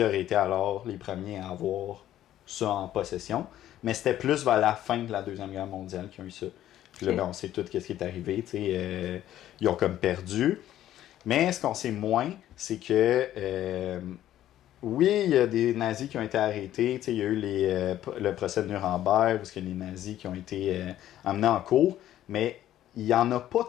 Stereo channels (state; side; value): quieter; right; 12.6 dB